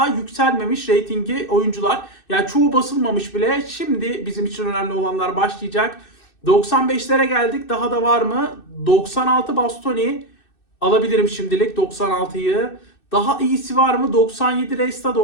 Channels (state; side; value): late; right; 2.6 ms